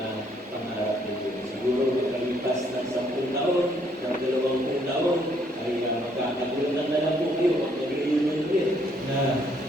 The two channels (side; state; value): both; normal; correlation 0.68